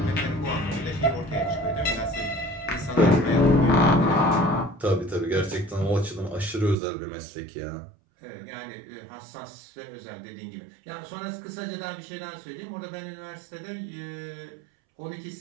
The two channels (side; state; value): left; drops out; at 6.8 s